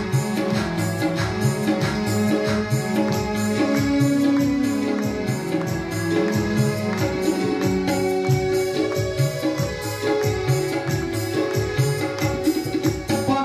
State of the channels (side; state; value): both; identical; correlation 1.00